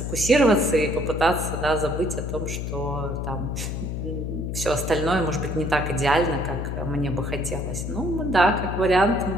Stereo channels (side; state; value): left; noise; hum, 4 dB below the sound